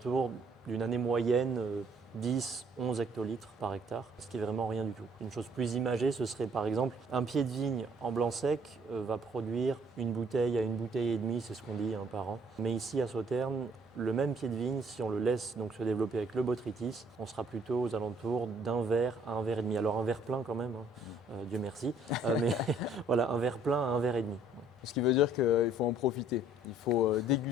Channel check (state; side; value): normal; both; correlation 0.61